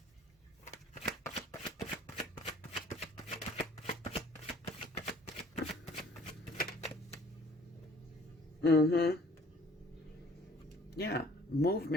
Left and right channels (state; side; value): normal; both; correlation 0.55